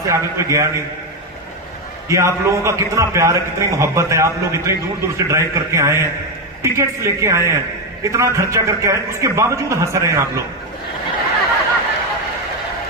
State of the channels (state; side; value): normal; both; correlation 0.08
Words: आगे कोई गया नहीं। ये आप लोगों का कितना प्यार है, कितनी मोहब्बत है। आप लोग इतनी दूर दूर से ड्राइव करके आए हैं, टिकट्स लेके आए हैं, इतना खर्चा करके आए, उसके बावजूद हंस रहे हैं आप लोग।